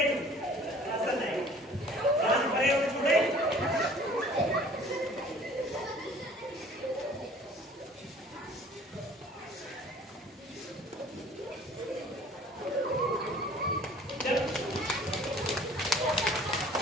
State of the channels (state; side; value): normal; both; correlation 0.51